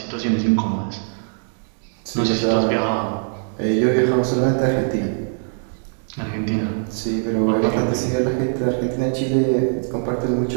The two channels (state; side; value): silent; left; 60 dB below the other